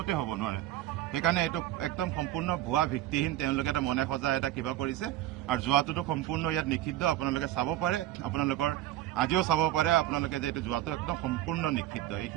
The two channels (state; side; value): quieter; left; 14.1 dB